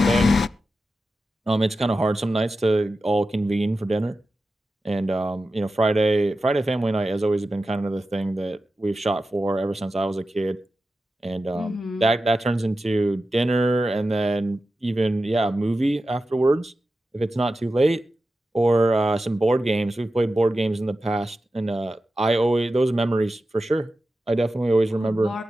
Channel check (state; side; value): normal; both; correlation 0.92